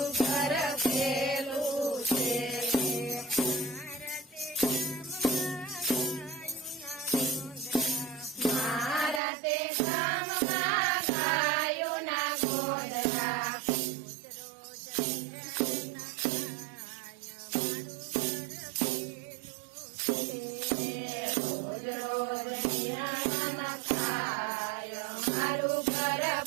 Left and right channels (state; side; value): drops out; left; at 9.2 s